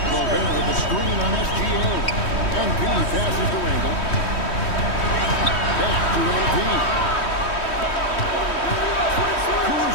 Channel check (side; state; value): right; late; 3.1 ms